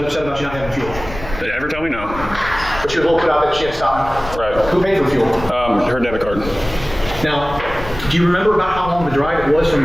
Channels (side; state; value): left; noise; rumble, 12 dB below the sound